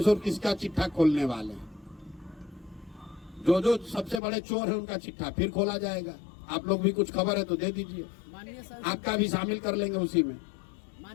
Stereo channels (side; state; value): right; drops out; at 4.2 s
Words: किसका चिट्ठा खोलने वाले हैं। जो सबसे बड़े चोर है उनका चिट्ठा फिर खोला जाएगा। आप लोग भी कुछ खबर है तो दे दीजिए, आपका भी शामिल कर लेंगे उसी में।